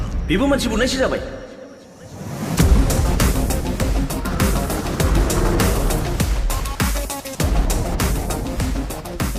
बेबो मानसि बुनायसो जाबाय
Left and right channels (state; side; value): identical; both; correlation 1.00